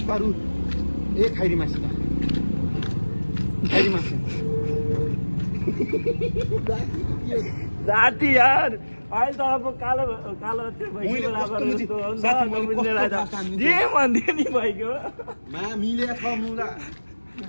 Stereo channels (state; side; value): inverted; both; correlation -1.00